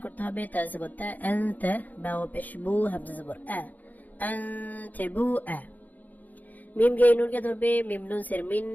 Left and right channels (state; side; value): late; right; 0.081 ms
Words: করতে হবে, তা জবর তা, আনতা, বা ও পেশ বু, হামজা জবর আ, আনতাবু আ। মিম গে নুনকে ধরবে, মিম নুন সের মিন,